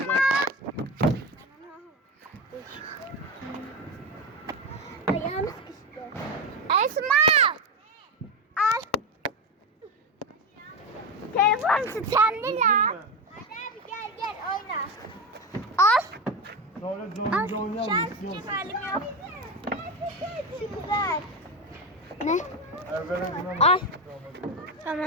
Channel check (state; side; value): normal; both; correlation 0.16